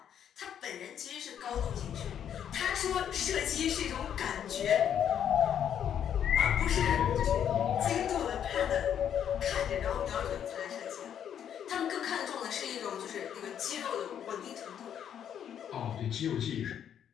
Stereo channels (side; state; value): right; quieter; 9.2 dB